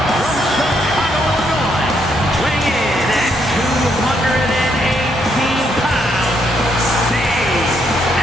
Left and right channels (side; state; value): both; normal; correlation 0.74